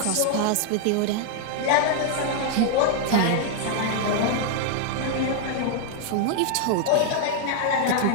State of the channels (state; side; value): different; both; correlation -0.01